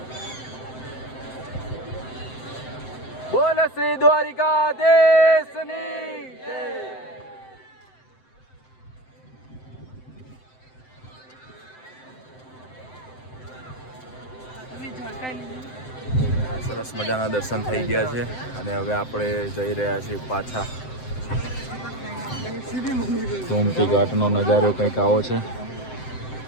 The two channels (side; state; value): right; late; 7.8 ms